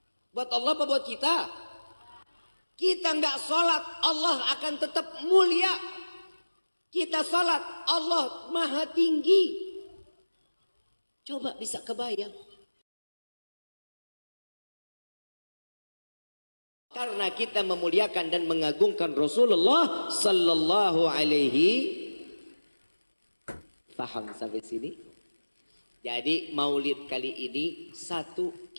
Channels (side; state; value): both; inverted; correlation -1.00